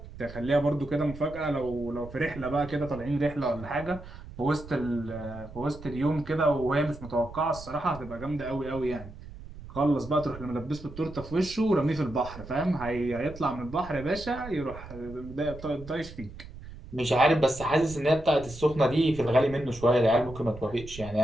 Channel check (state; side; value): noise; right; rumble, 15 dB below the sound